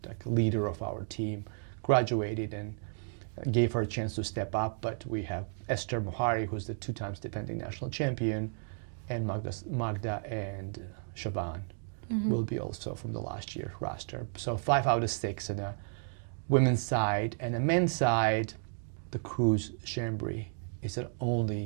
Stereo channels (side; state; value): left; silent; 56 dB below the other